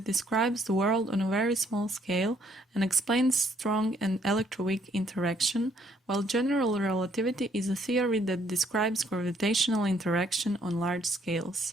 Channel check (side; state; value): both; normal; correlation 0.67